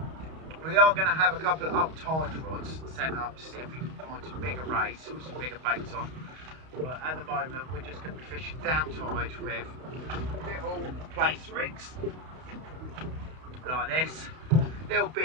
We are going to have a couple of up tide rods sent up to see if we can find some bigger rays or some bigger baits on. But at the moment we're just going to be fishing down tide with little Plaice rigs like this, little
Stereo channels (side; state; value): left; late; 31 ms